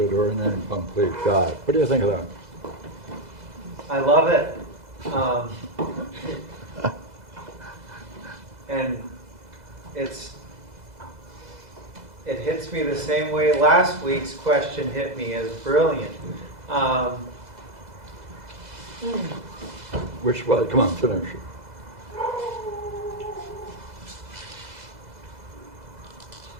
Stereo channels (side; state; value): left; late; 2.0 ms